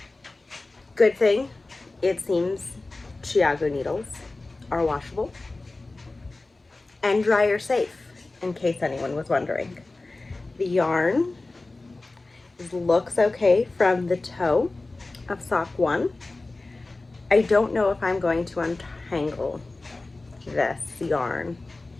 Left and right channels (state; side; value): quieter; right; 3.2 dB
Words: Good thing, it seems Chiago needles are washable and dryer safe, in case anyone was wondering. The yarn looks okay from the toe of sock 1. I don't know if I'm going to untangle this yarn